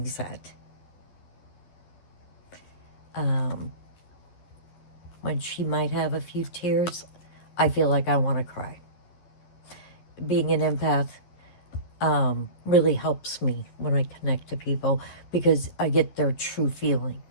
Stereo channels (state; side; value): late; right; 12 ms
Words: sad. When she might have a few tears, I feel like I want to cry. Being an empath really helps me when I connect to people because I get their true